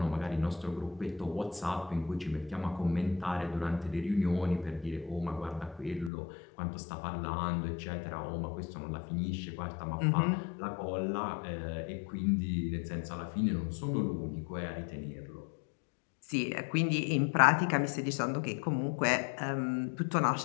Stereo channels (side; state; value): right; drops out; at 6.1 s